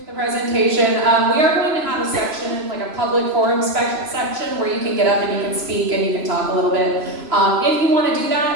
the presentation. We are going to have a section, a public forum section, where you can get up and you can speak and you can talk a little bit. If you want to do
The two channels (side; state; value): left; late; 3.0 ms